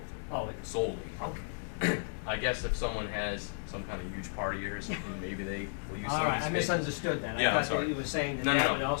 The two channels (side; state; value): right; silent; 55 dB below the other